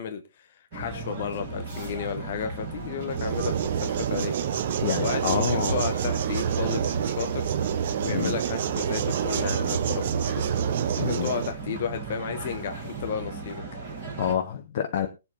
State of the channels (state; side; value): inverted; both; correlation -0.53